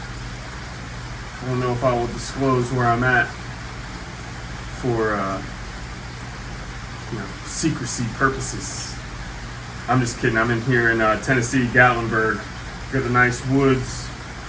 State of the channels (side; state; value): both; identical; correlation 1.00